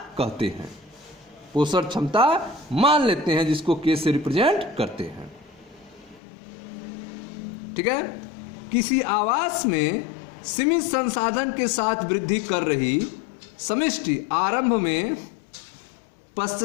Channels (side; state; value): right; drops out; at 6.2 s